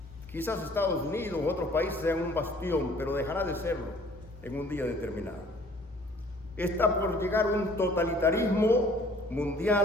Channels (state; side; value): normal; both; correlation 0.55